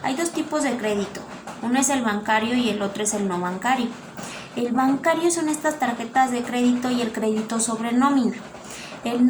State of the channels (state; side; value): identical; both; correlation 1.00